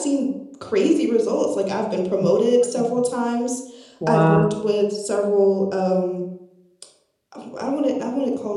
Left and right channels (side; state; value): both; identical; correlation 1.00